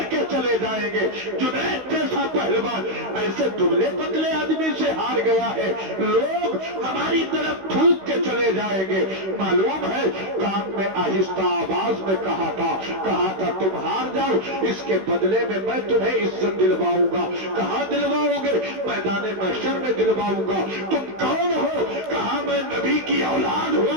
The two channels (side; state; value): left; late; 16 ms